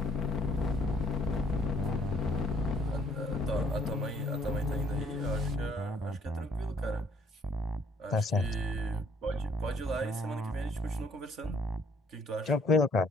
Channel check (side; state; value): both; normal; correlation 0.63